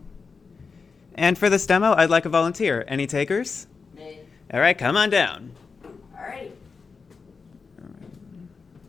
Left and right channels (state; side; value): quieter; right; 5.0 dB